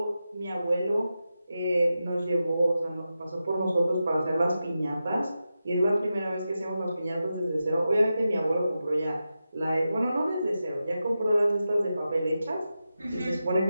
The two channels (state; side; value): inverted; both; correlation -0.90